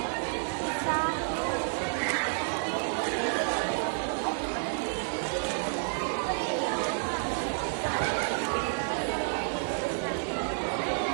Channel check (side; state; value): left; silent; 56 dB below the other